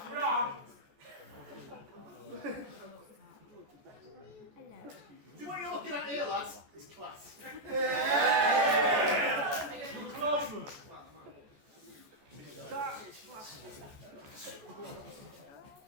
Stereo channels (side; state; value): left; late; 14 ms